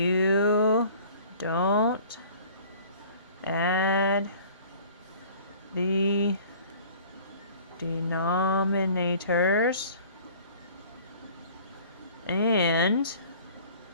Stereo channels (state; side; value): inverted; both; correlation -0.49